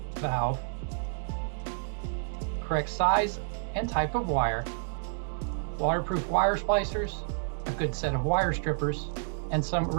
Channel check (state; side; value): silent; left; 58 dB below the other